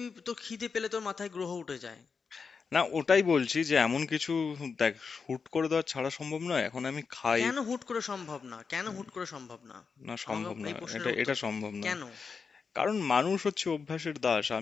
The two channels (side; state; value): right; quieter; 5.4 dB